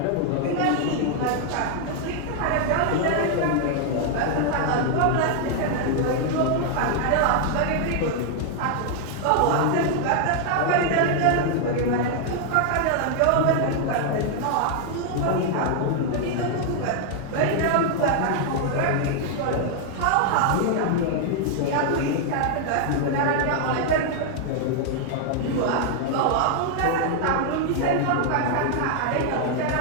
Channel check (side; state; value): both; different; correlation 0.00